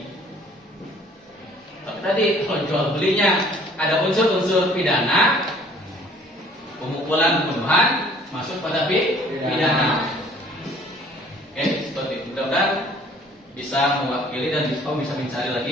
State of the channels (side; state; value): both; normal; correlation 0.55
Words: Tapi tadi kalau jual belinya ada unsur-unsur pidana, pemukulan, pembunuhan masuk pada pidana. Oke, seperti itu. Mudah-mudahan bisa mewakili dan bisa mencari